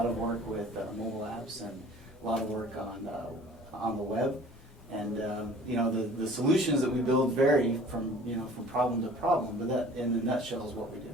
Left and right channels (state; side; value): normal; both; correlation 0.48